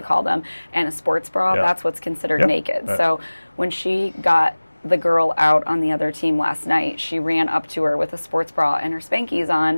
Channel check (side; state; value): both; inverted; correlation -1.00